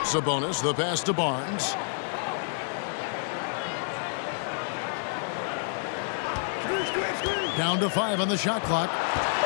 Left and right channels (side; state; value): right; silent; digital silence